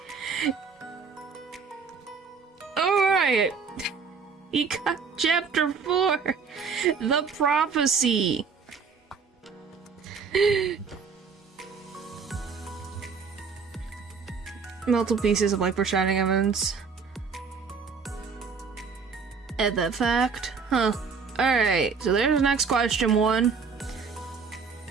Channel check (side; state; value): left; quieter; 5.5 dB